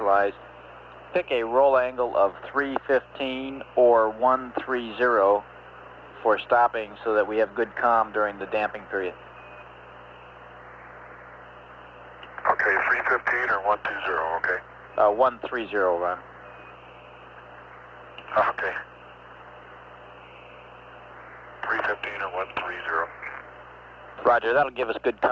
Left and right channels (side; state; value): both; identical; correlation 1.00